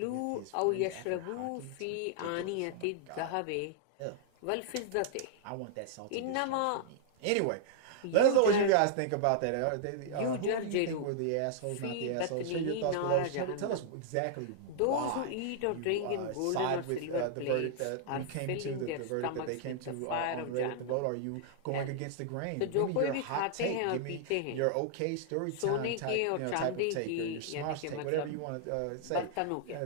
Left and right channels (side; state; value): both; different; correlation -0.01